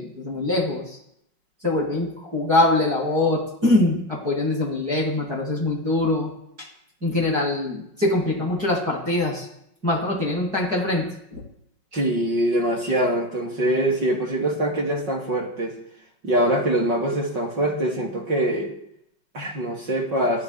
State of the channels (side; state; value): left; late; 5.4 ms